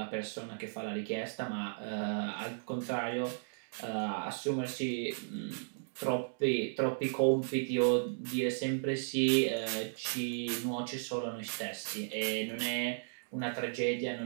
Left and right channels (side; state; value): left; silent; digital silence